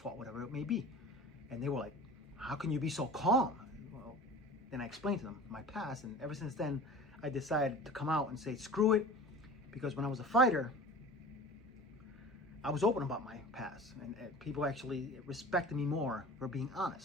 whatever it may be. And they were like, how can you be so calm? Well, then I explained to them my past, and ever since then, I decided to come out and say, screw it, because when I was a fighter, I was open about my past, and people actually respected me more for being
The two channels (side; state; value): both; normal; correlation 0.39